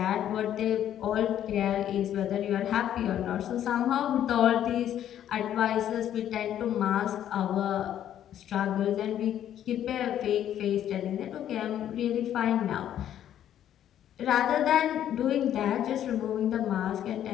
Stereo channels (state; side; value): quieter; right; 10.8 dB